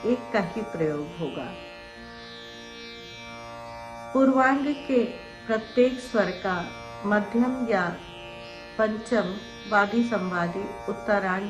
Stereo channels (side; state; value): both; identical; correlation 1.00